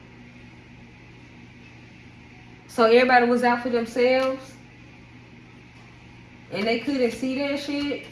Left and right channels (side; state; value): both; identical; correlation 1.00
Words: So everybody was out for themselves, and they couldn't see that shit,